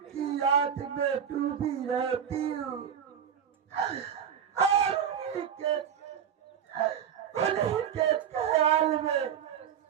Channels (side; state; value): left; quieter; 8.4 dB